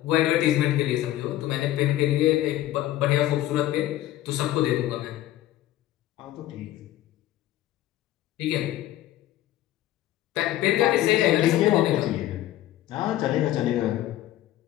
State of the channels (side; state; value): right; quieter; 14.2 dB